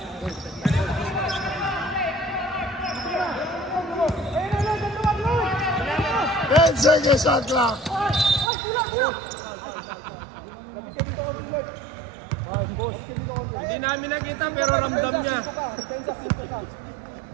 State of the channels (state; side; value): drops out; left; at 8.5 s